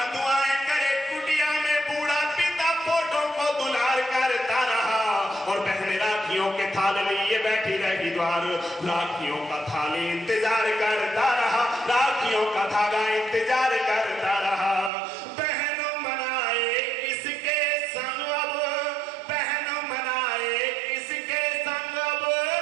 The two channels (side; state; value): left; drops out; at 14.9 s